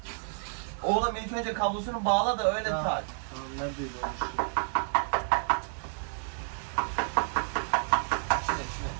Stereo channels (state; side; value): silent; left; 58 dB below the other